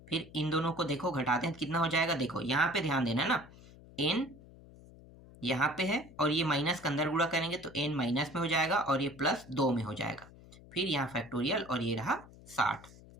फिर इन दोनों को देखो घटाते हैं कितना हो जाएगा, देखो यहाँ पे ध्यान देना ना, n यहाँ पे है और ये माइनस के अंदर गुणा करेंगे तो n माइनस में हो जाएगा और ये प्लस 2 में हो जाएगा। फिर यहाँ फैक्टोरियल और ये रहा 60,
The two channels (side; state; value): left; noise; hum, 21 dB below the sound